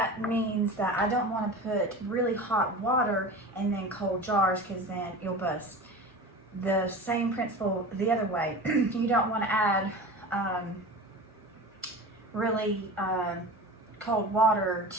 means that I don't want to put really hot water and then cold jars, because then you'll bust. The same principle the other way. You don't want to add really cold water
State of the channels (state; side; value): normal; both; correlation 0.33